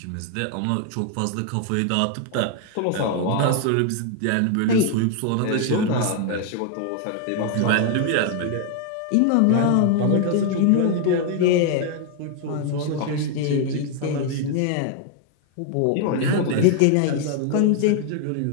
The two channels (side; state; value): both; different; correlation 0.00